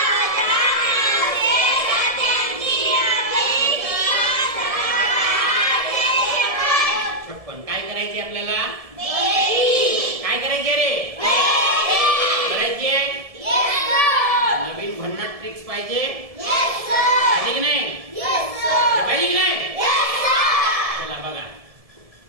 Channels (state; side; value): late; left; 1.7 ms